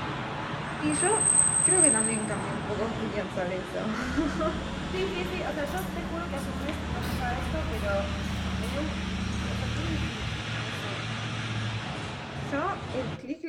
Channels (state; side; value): identical; both; correlation 1.00